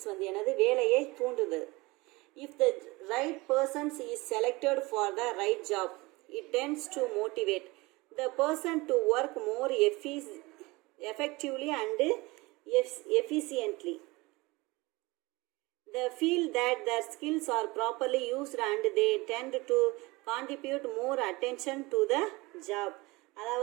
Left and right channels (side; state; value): left; quieter; 23.1 dB